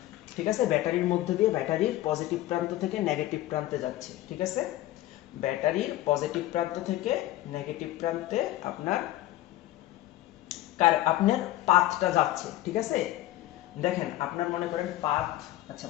ঠিক আছে, ব্যাটারির মধ্যে দিয়ে ব্যাটারির পজিটিভ প্রান্ত থেকে নেগেটিভ প্রান্তে যাচ্ছে, ঠিক আছে। ব্যাটারির পজিটিভ প্রান্ত থেকে নেগেটিভ প্রান্তে আপনার পাথটা যাচ্ছে, ঠিক আছে। দেখেন আপনার মনে করেন পাথ, আচ্ছা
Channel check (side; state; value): right; quieter; 15.1 dB